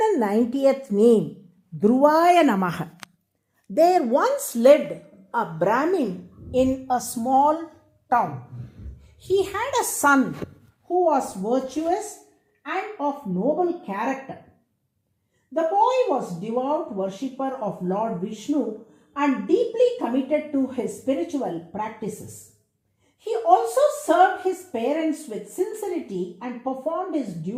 name, DRUVAAYA NAMAH. There once lived a Brahmin in a small town. He had a son who was virtuous and of noble character. The boy was devout worshipper of Lord Vishnu and deeply committed to his spiritual practices. He also served his parents with sincerity and performed his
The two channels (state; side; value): identical; both; correlation 1.00